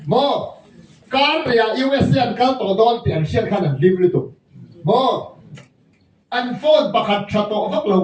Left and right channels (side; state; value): both; identical; correlation 1.00